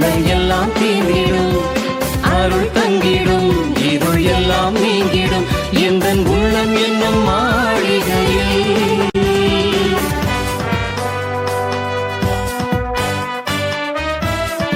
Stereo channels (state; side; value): identical; both; correlation 1.00